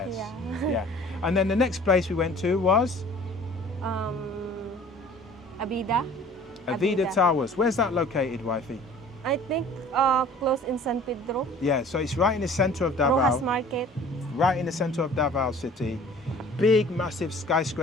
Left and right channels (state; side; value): normal; both; correlation 0.48